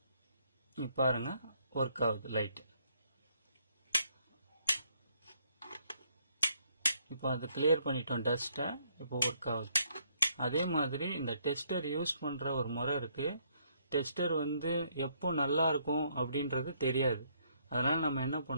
பாருங்க ஒர்க் ஆகுது லைட். இப்போ அதை கிளியர் பண்ணிட்டோம் டஸ்ட்டை, இப்போ ஒர்க் ஆகுது. அதே மாதிரி இந்த டெஸ்டர் யூஸ் பண்ற ஒரு முறை இருக்கு. டெஸ்டர் வந்து எப்போ நல்லா இருக்கும் அப்படின்றது தெரியாது. அதனால நம்ம என்ன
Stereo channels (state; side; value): inverted; both; correlation -0.69